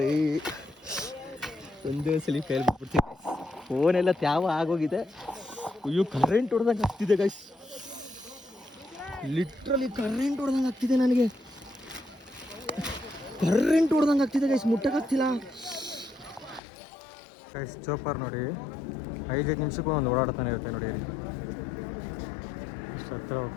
ಒಂದೇ ಸಲ ಫೇಲ್ ಬಿಟ್ಬಿಡ್ತೀನಿ. ಫೋನೆಲ್ಲ ತ್ಯಾವ ಆಗೋಗಿದೆ. ಅಯ್ಯೋ, ಕರೆಂಟ್ ಹೊಡೆದಂಗೆ ಆಗ್ತಿದೆ ಗೈಸ್. ಲಿಟ್ರಲಿ ಕರೆಂಟ್ ಹೊಡೆದಂಗೆ ಆಗ್ತಿದೆ ನನಗೆ. ಕರೆಂಟ್ ಹೊಡೆದಂಗೆ ಆಗ್ತಿದೆ ಗೈಸ್, ಮುಟ್ಟಕ್ಕಾಗ್ತಿಲ್ಲ. ಗೈಸ್ ಚೋಪರ್ ನೋಡಿ 5 ನಿಮಿಷಕ್ಕೂ ಒಂದು ಓಡಾಡ್ತಾನೆ ಇರುತ್ತೆ ನೋಡಿ. ಅಷ್ಟು ಹತ್ರ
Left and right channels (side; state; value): right; drops out; at 16.6 s